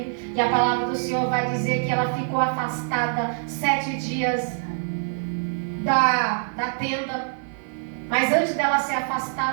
E a palavra do Senhor vai dizer que ela ficou afastada 7 dias da tenda. Mas antes dela ser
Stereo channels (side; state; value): left; silent; 56 dB below the other